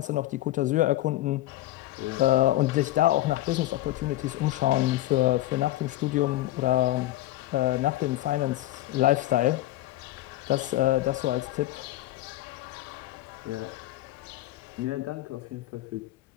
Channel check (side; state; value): right; quieter; 15.8 dB